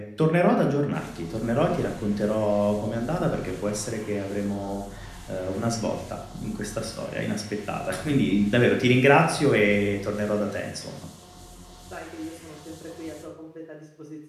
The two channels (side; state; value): both; identical; correlation 1.00